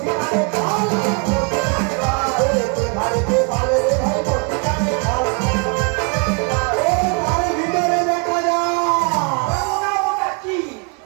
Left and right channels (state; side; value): quieter; left; 36.9 dB